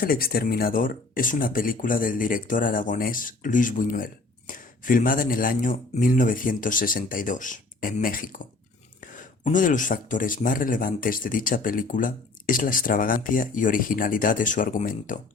exterminador es una película del director aragonés Luis Buñuel, filmada en el año 1962, en México. Uno de los factores más relevantes de dicha película es la extravagancia y originalidad de su argumento.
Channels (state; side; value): quieter; right; 3.5 dB